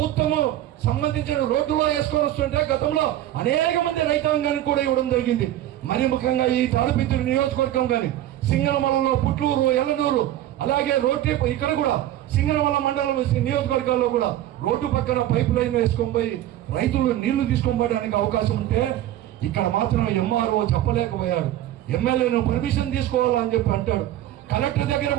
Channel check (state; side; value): quieter; left; 13.2 dB